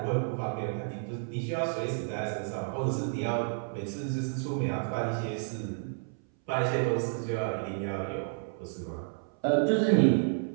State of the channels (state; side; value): silent; left; 57 dB below the other